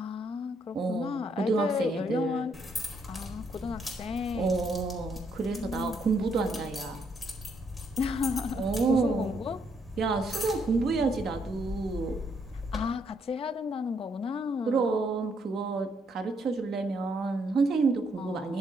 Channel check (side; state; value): both; normal; correlation 0.73